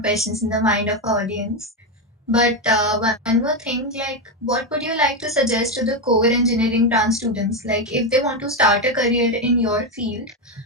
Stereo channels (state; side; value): normal; both; correlation 0.09